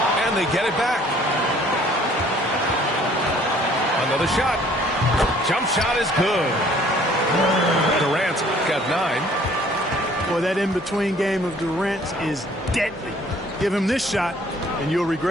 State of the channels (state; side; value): normal; both; correlation 0.57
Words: And they get it back. Another shot. Jump shot is good. Durant's got 9. Boy, that in-between game of Durant's is deadly. Give him this shot, and you'll